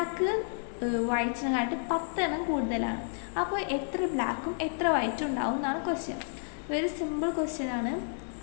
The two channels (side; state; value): right; silent; digital silence